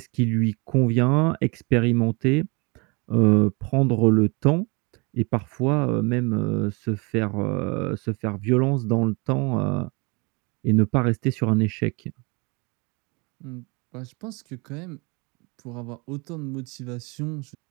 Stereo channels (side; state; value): left; quieter; 29.3 dB